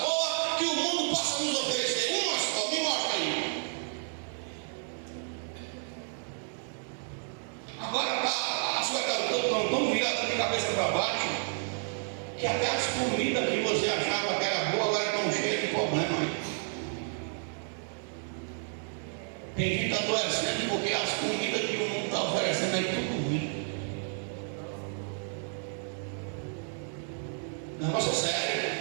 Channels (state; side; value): silent; left; 57 dB below the other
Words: boa que o mundo possa nos oferecer. Uma só, me mostra aí. Agora as coisas estão tão viradas de cabeça para baixo que até as comidas que você achava que era boa agora estão cheias de problema aí. Tem gente adoecendo porque as comidas que o mundo está oferecendo aí tudo ruim. Negócio é sério.